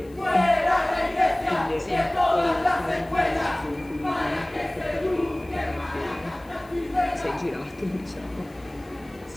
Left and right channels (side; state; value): left; noise; hiss, 29 dB below the sound